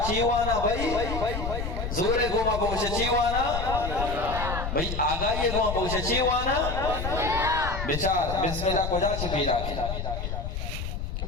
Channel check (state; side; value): noise; left; rumble, 4 dB below the sound